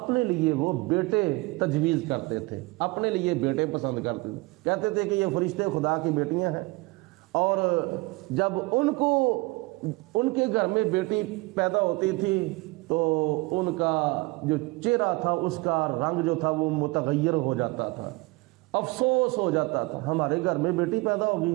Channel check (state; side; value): quieter; left; 24.2 dB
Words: لیے وہ بیٹے تجویز کرتے تھے، اپنے لیے بیٹے پسند کرتے تھے، کہتے تھے کہ یہ فرشتے خدا کی بیٹیاں ہیں، اور جب ان کو ان کے گھر میں بیٹی پیدا ہوتی تھی تو ان کا جو چہرہ تھا اس کا رنگ جو تھا وہ متغیر ہو جاتا تھا، افسوس ہو جاتا تھا ہمارے گھر میں بیٹی پیدا ہو